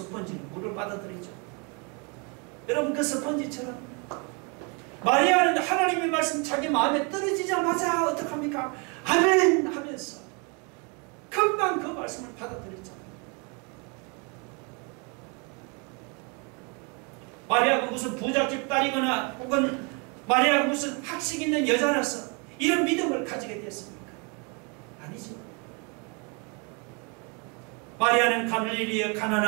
물을 빨아들이죠. 여러분 그 스펀지처럼 마리아는 하나님의 말씀 자기 마음에 떨어지자마자 어떡합니까? 아멘 하면서 금방 그 말씀을 받아들였잖아요. 마리아가 무슨 부잣집 딸이거나 혹은 마리아가 무슨 학식 있는 여자라서 이런 믿음을 가지게 됐습니까? 아니죠. 마리아는 갈릴리에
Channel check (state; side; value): quieter; left; 33.2 dB